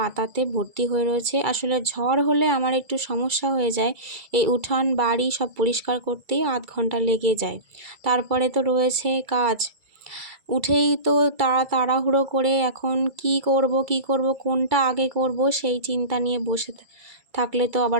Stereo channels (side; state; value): left; late; 2.3 ms